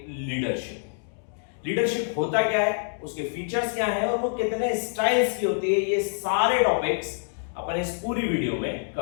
लीडरशिप। लीडरशिप होता क्या है, उसके फीचर्स क्या हैं और वो कितने स्टाइल्स की होती है, ये सारे टॉपिक्स अपन इस पूरी वीडियो में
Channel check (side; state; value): right; silent; 60 dB below the other